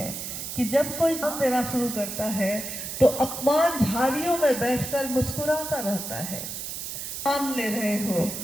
कि जब कोई काम देना शुरू करता है तो अपमान झाड़ियों में बैठकर मुस्कुराता रहता है। मान ले रहे हो,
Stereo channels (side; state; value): right; noise; hiss, 6 dB below the sound